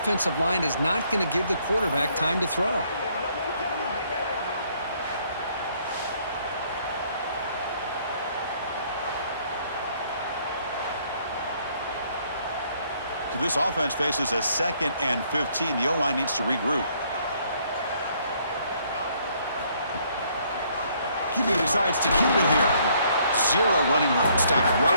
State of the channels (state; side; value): inverted; both; correlation -0.66